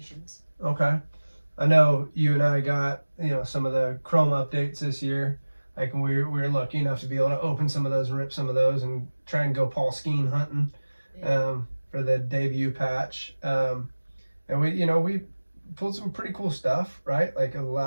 Okay. I know you and I got some of the Chrome updates this year. Like we were lucky enough to be able to open some of those and rip some of those and try and go Paul Skeen hunting. Yeah. For the debut patch. And we pulled some pretty cool stuff, right? Like in the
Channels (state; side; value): inverted; both; correlation -1.00